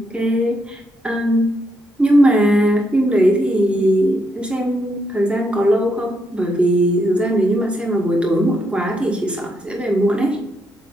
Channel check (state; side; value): normal; both; correlation 0.78